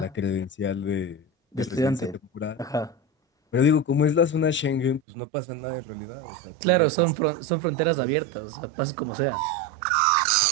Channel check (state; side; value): drops out; left; at 5.0 s